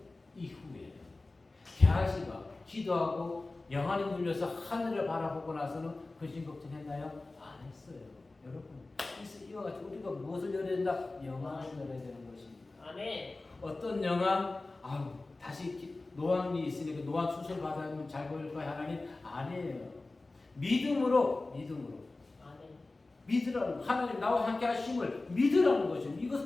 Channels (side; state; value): right; quieter; 3.2 dB